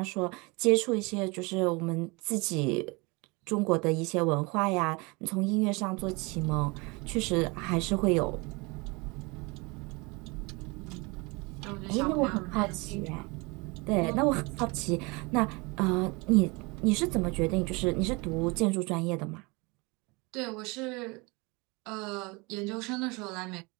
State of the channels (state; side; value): quieter; left; 27.2 dB